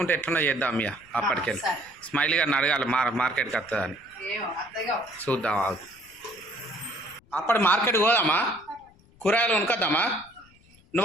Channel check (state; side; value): noise; left; rumble, 29 dB below the sound